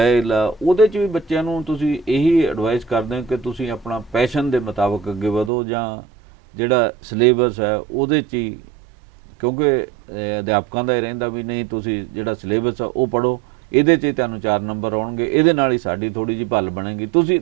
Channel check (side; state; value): left; drops out; at 5.5 s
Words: ਆ ਉਹਦੇ 'ਚ ਵੀ ਬੱਚਿਆਂ ਨੂੰ ਤੁਸੀਂ ਇਹੀ ਐਡਵਾਈਸ ਕਰਦੇ ਹੋ ਕਿ ਤੁਸੀਂ ਆਪਣਾ ਪੈਸ਼ਨ ਦੇ ਮੁਤਾਬਕ ਅੱਗੇ ਵਧੋ, ਜਾਂ ਜਿਹੜਾ ਸਿਲੇਬਸ ਹੈ ਉਹਦੇ 'ਚ ਹੀ, ਕਿਉਂਕਿ ਅਧਿਆਪਕਾਂ ਦਾ ਇਹ ਰਹਿੰਦਾ ਵੀ ਨਹੀਂ ਤੁਸੀਂ ਜਿਹੜਾ ਸਿਲੇਬਸ ਆ ਉਹ ਪੜ੍ਹੋ, ਇਹਦੇ 'ਚ ਹੀ ਤੁਹਾਨੂੰ 4 ਨੰਬਰ ਆਉਣਗੇ, ਇਹਦੇ ਨਾਲ ਹੀ ਸਾਡੀ ਥੋੜ੍ਹੀ ਜਿਹੀ ਭੱਲ ਬਣੇਗੀ, ਤੁਸੀਂ